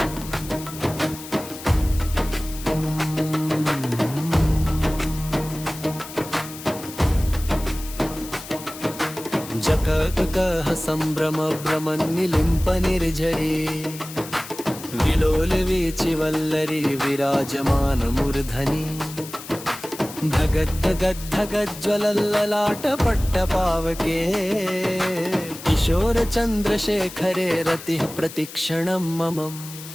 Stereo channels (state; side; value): noise; left; hiss, 13 dB below the sound